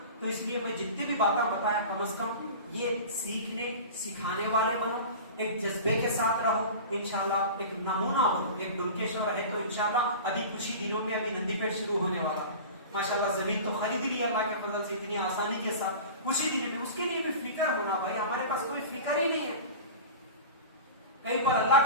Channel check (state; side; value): inverted; both; correlation -0.34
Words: तो इसलिए मैं जितनी भी बातें बताया कम से कम ये सीखने सिखाने वाले बनो, एक जज्बे के साथ रहो, इंशाल्लाह एक नमूना बनो, एक डुलकेश्वर है तो इंशाल्लाह अभी कुछ ही दिनों में अभी नंदीपेट शुरू होने वाला है। माशाल्लाह जमीन तो खरीद ली अल्लाह के फजल से इतनी आसानी के साथ, कुछ ही दिनों में। उसके लिए भी फिक्र होना भाई, हमारे पास कोई फिक्र ही नहीं है। कहीं पर अल्लाह